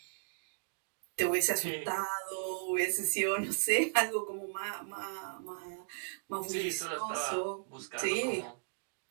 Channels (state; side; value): silent; left; digital silence